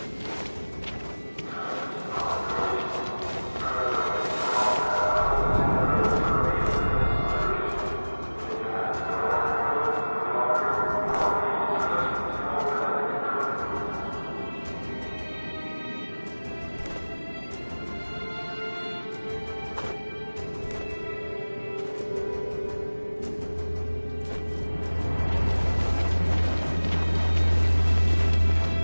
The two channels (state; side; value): inverted; both; correlation -1.00